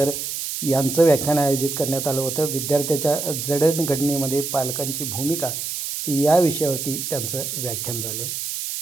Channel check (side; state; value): right; noise; hiss, 4 dB below the sound